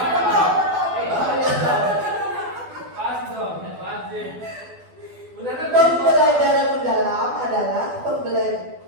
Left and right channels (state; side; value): late; left; 12 ms